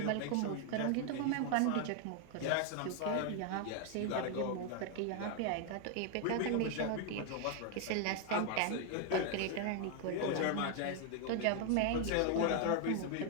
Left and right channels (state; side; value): different; both; correlation 0.00